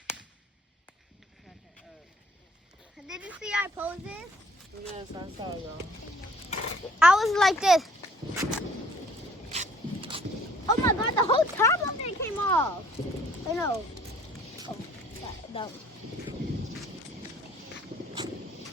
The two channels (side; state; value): both; normal; correlation 0.57